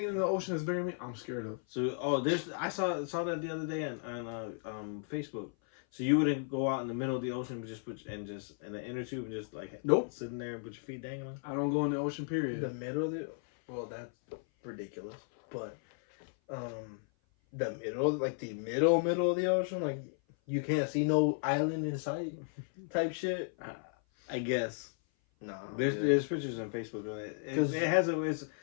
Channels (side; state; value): right; silent; 55 dB below the other